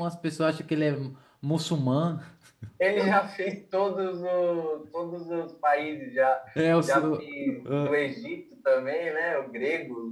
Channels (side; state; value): both; identical; correlation 1.00